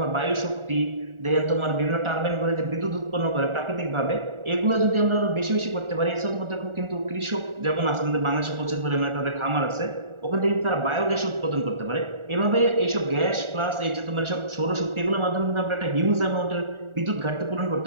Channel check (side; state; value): left; late; 1.4 ms